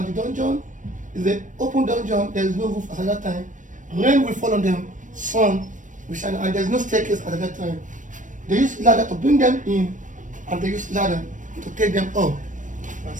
the dungeon. It's an open dungeon, there's no roof at that time. Rain will fall on them, sun will shine, and there's no staircase at that time. They use ladder to bring them in, and they use ladder to take them up.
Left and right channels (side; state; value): left; late; 0.37 ms